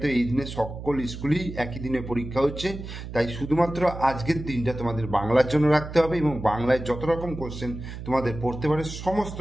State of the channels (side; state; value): right; noise; hum, 10 dB below the sound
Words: এই দিনে সকল স্কুলেই একই দিনে পরীক্ষা হচ্ছে, তাই শুধুমাত্র আজকের দিনটা তোমাদের বাংলার জন্য রাখতে হবে এবং বাংলায় যত রকম কোশ্চেন তোমাদের পড়তে পারে সমস্ত